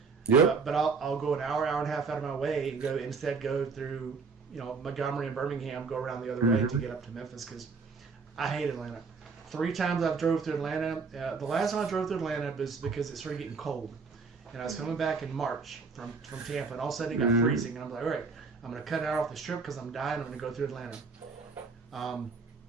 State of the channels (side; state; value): left; quieter; 4.8 dB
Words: Yep. But I'll go an hour and a half out of my way and go through Montgomery and Birmingham, go around the other way to get up to Memphis because I hate Atlanta. 3 times I've drove through Atlanta. The last time I drove through Atlanta was because it started getting cold. And I was coming back in March from Tampa, and all of a sudden it got freezing. And I'm like, all right, I'm going to cut out off the strip because I'm dying. I'm going to go through Atlanta.